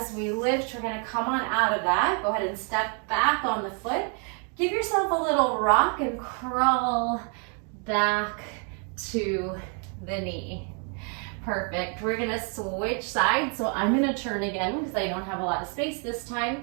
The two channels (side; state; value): left; quieter; 39.9 dB